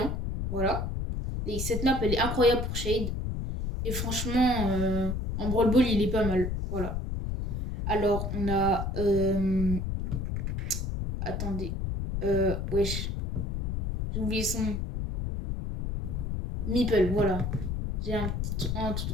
Voilà. Et cette map, elle est incroyable pour Shade. Et franchement, en Brawl Ball, il est pas mal. Voilà. Alors, on a. Attendez. Wesh. J'ai oublié son nom. Meeple, voilà. J'ai un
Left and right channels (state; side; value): noise; left; rumble, 2 dB below the sound